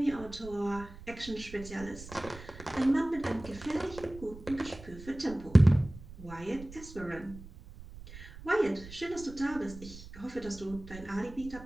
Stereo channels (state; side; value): noise; right; rumble, 15 dB below the sound